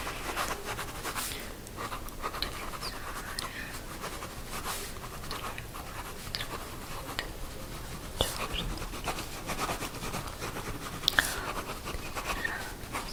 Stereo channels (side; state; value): both; identical; correlation 1.00